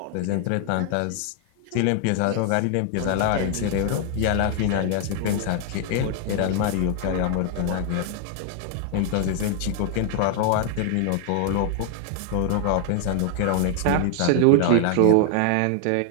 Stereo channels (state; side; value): different; both; correlation 0.00